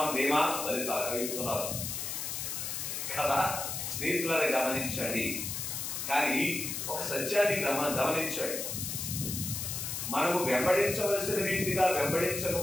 ధీమా. చెప్తున్నారు కదా స్నేహితులారా, గమనించండి. కానీ ఒక సత్యాన్ని గమనించండి, మనము వెంబడించవలసిన రీతిగా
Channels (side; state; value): left; noise; hiss, 4 dB below the sound